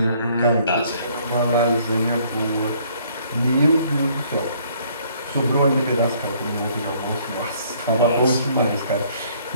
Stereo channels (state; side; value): inverted; both; correlation -0.62